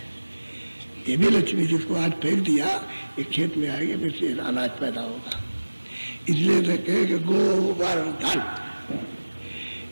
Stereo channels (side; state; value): both; inverted; correlation -1.00